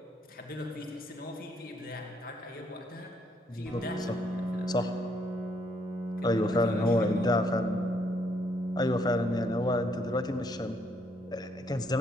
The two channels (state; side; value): normal; both; correlation 0.71